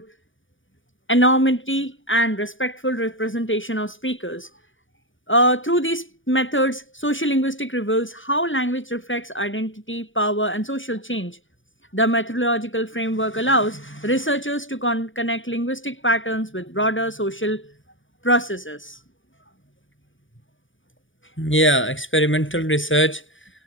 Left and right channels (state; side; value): late; right; 0.57 ms